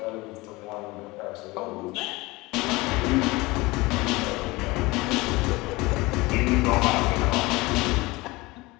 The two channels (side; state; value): right; quieter; 22.0 dB